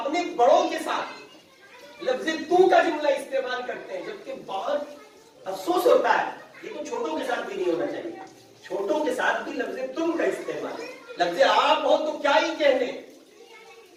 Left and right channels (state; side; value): identical; both; correlation 1.00